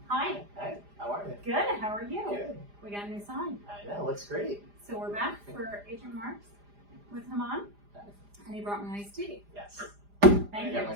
Hi. Hey, how are you? Good. How are you? Good. We got a new sign. I know, looks great. So we're back for Agent Marks with Haman, and he brought me iced tea. Yes. Thank I you. got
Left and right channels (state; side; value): late; left; 4.9 ms